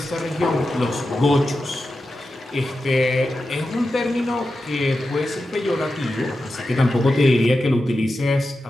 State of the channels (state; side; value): normal; both; correlation 0.91